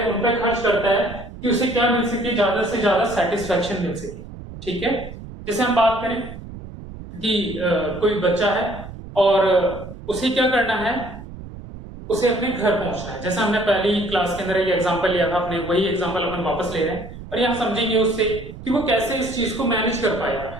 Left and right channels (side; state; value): right; noise; rumble, 13 dB below the sound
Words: उन पर खर्च करता है कि उसे क्या मिल सके? ज्यादा से ज्यादा सेटिस्फैक्शन मिल सके। ठीक है, जैसे हम बात करें कि कोई बच्चा है और उसे क्या करना है? उसे अपने घर पहुंचना है। जैसा हमने पहली क्लास के अंदर एक एग्जांपल लिया था, अपने वही एग्जांपल अपन वापस ले रहे हैं और यहाँ समझेंगे उससे कि वो कैसे इस चीज को मैनेज कर पाएगा,